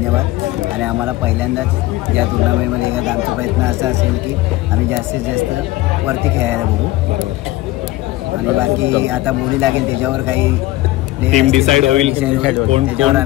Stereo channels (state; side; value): quieter; right; 17.5 dB